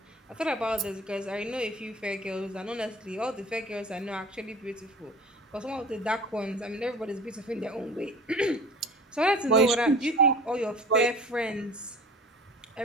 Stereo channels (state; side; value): normal; both; correlation 0.41